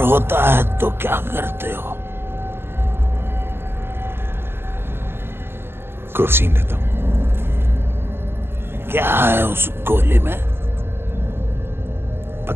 होता है तो क्या करते हो? क्रोसिन लेता हूं। क्या है उस गोली में?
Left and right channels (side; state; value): left; late; 0.11 ms